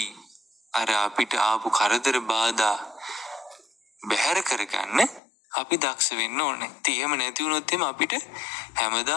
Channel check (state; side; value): drops out; right; at 5.2 s